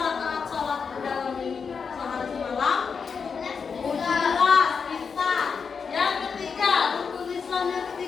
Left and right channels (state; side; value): quieter; right; 5.8 dB